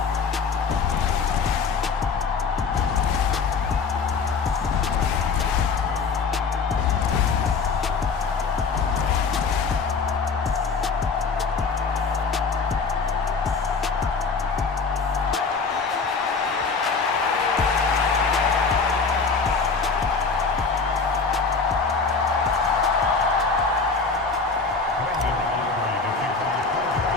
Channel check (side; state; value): right; quieter; 4.8 dB